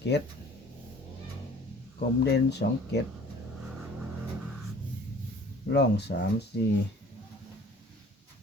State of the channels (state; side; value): normal; both; correlation 0.50